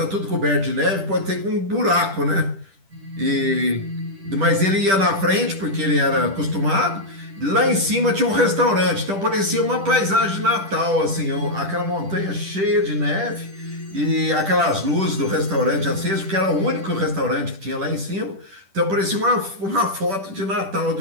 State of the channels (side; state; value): left; late; 10 ms